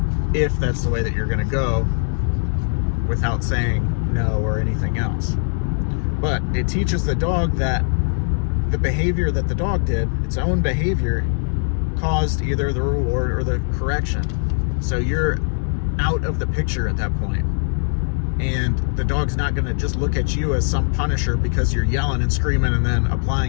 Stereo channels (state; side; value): silent; right; digital silence